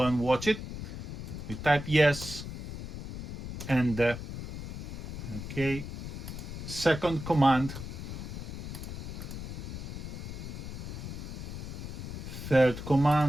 and watch it. We type yes, and okay, second command, third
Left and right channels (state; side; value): noise; left; rumble, 7 dB below the sound